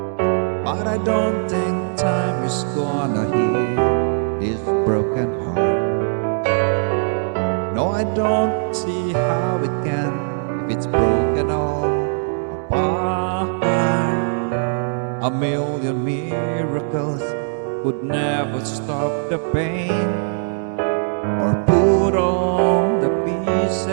But I don't think time is gonna heal this broken heart. No, I don't see how it can if it's broken all apart. A million miracles would never stop the pain or put all the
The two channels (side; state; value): left; silent; digital silence